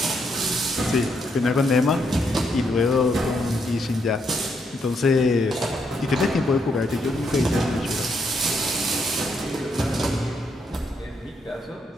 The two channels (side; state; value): both; normal; correlation 0.77